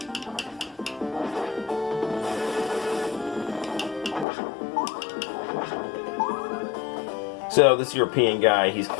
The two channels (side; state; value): right; drops out; at 4.2 s